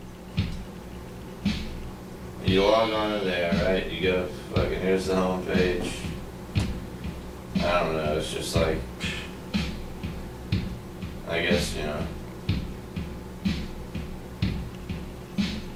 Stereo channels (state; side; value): identical; both; correlation 1.00